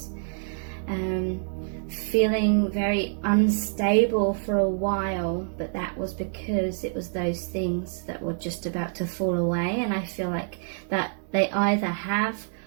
Feeling very unstable for a while, but that was because it was those things that were just about to fall away. And I feel like that they either have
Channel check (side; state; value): left; silent; digital silence